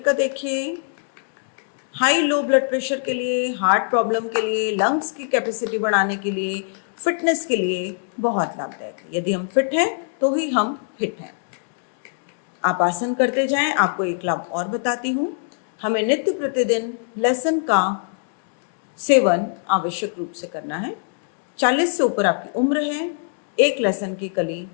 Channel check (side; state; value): right; silent; digital silence